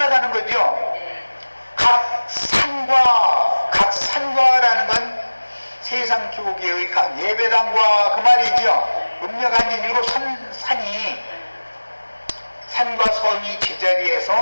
거죠. 각 산과 각 세상 교계의 각 예배당과 그 말이죠. 음력한지 일곱 산이 산과 섬이 제자리에서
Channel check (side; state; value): both; inverted; correlation -1.00